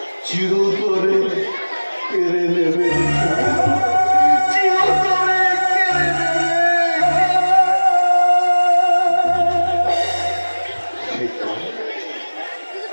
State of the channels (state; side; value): inverted; both; correlation -1.00